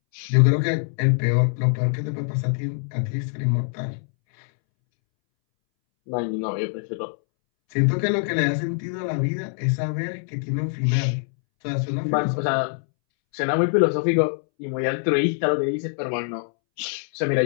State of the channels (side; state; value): right; silent; 63 dB below the other